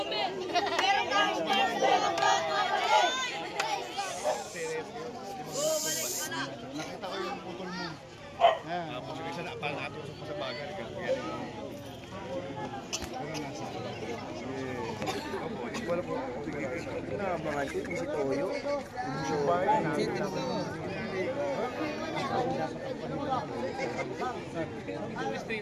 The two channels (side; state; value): both; identical; correlation 1.00